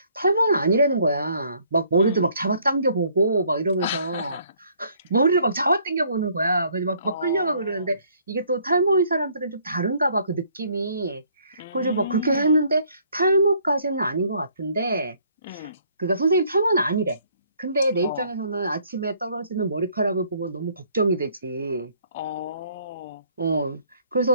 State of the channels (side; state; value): both; inverted; correlation -0.63